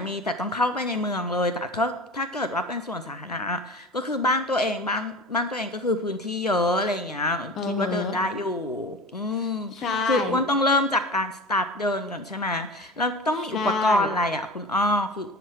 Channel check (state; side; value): normal; both; correlation 0.34